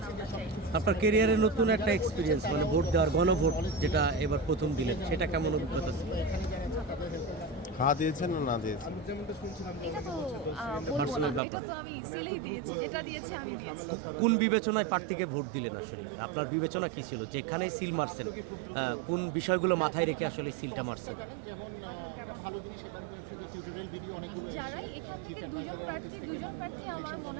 আমরা চাই। আপনার কেরিয়ারে নতুন একটা এক্সপিরিয়েন্স, মানে ভোট দেওয়ার, গণভোট যেটা এবার প্রথম দিলেন, সেটা কেমন অভিজ্ঞতা ছিল? হ্যাঁ দিয়েছেন না না দিয়েছেন? এটা তো বলবো না, এটা তো আমি সিলেই দিয়েছি, যেটা দিয়েছে আমি দিয়েছি। কোন বিবেচনায় প্রার্থীকে ভোট দিলেন? আসলে আপনার বিবেচনা কি ছিল, যেখানে সিল মারছেন কোন বিষয়গুলো মাথায় রেখে আসলে সিলটা মারছেন? যারাই এখান থেকে দুজন প্রার্থী আমার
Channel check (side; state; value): left; drops out; at 11.4 s